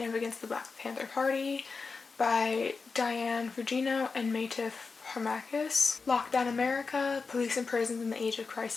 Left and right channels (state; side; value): quieter; right; 4.6 dB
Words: of the Black Panther Party by Diane Fugino and Matif Harmakis. Lockdown America, Police and Prisons in the Age of